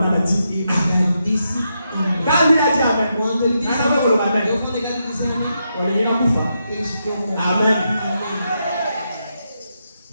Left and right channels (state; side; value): inverted; both; correlation -0.83